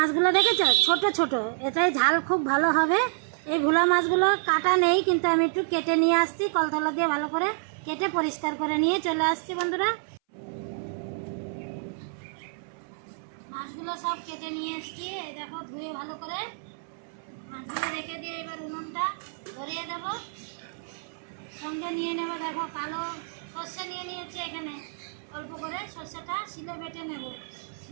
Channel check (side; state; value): left; silent; 59 dB below the other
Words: দেখেছো ছোট ছোট এটাই ঝাল খুব ভালো হবে এই ভোলা মাছগুলো কাটা নেই কিন্তু আমি একটু কেটে নিয়ে আসছি কলতলা দিয়ে ভালো করে কেটে পরিষ্কার করে নিয়ে চলে আসছি বন্ধুরা মাছগুলো সব কেটে নিয়ে এসেছি এই দেখো ধুয়ে ভালো করে মাছগুলো রেখে দিয়ে এবার উনুনটা ধরিয়ে দেব সঙ্গে নিয়ে নেব দেখো কালো সর্ষে নিয়ে নিয়েছি এখানে অল্প করে সর্ষেটা শিলে বেটে নেব